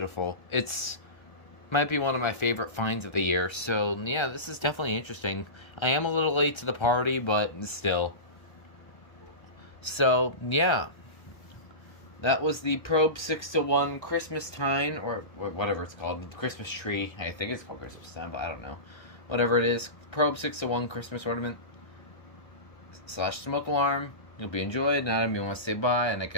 It's might be one of my favorite finds of the year. So yeah, this is definitely interesting. I am a little late to the party, but still. So yeah, that was the Probe 6-to-1 Christmas Time, or whatever it's called, Christmas tree. I think it's called Christmas Time, but I don't know. Whatever it is, Probe 6-to-1 Christmas ornament / smoke alarm. You'll be enjoyed. Now, you want to say bye, and I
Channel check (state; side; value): late; right; 1.3 ms